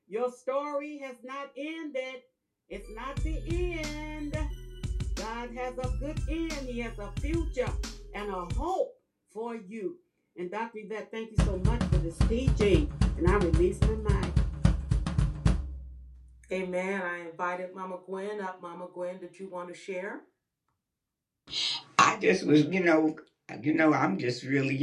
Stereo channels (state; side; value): identical; both; correlation 1.00